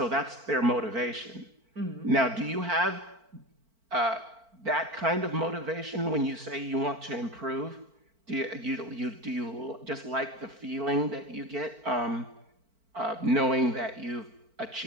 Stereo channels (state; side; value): late; left; 4.5 ms